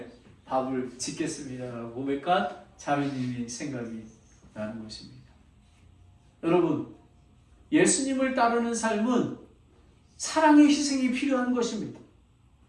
밥을 짓겠습니다라고 고백한 자매님이 생각이 나는 것입니다. 여러분, 예수님을 따르는 삶은 사랑의 희생이 필요한 것입니다.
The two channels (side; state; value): both; identical; correlation 1.00